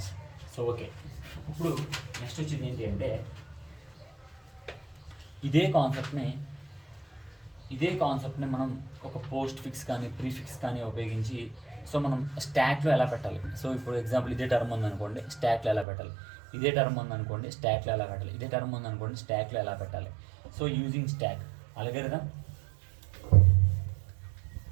So okay. ఇప్పుడు నెక్స్ట్ వచ్చింది ఏంటి అంటే ఇదే కాన్సెప్ట్ని మనం ఒక పోస్ట్ ఫిక్స్ కానీ ప్రీఫిక్స్ కానీ ఉపయోగించి సో మనం స్టాక్లో ఎలా పెట్టాలి. సో ఇప్పుడు ఎగ్జాంపుల్ ఇదే టర్మ్ ఉందనుకోండి, స్టాక్లో ఎలా పెట్టాలి. ఇదే టర్మ్ ఉందనుకోండి, స్టాక్లో ఎలా పెట్టాలి. ఇదే టర్మ్ ఉందనుకోండి, స్టాక్లో ఎలా పెట్టాలి. So using stock algorithm.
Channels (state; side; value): drops out; left; at 15.9 s